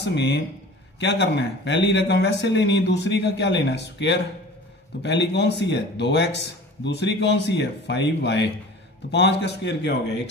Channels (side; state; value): both; normal; correlation 0.41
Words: में, क्या करना है पहली रकम वैसे लेनी है, दूसरी का क्या लेना है स्क्वायर। तो पहली कौन सी है 2x, दूसरी कौन सी है 5y। तो 5 का स्क्वायर क्या हो गया